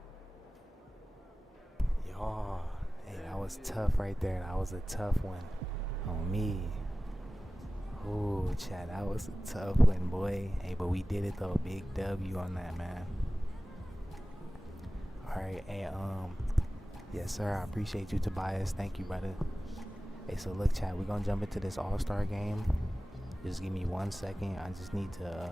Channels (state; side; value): normal; both; correlation 0.97